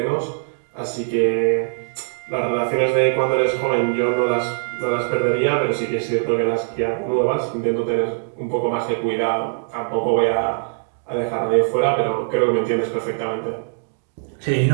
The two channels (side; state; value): left; silent; digital silence